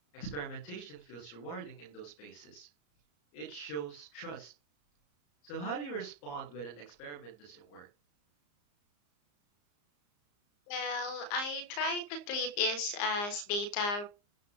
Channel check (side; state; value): right; late; 34 ms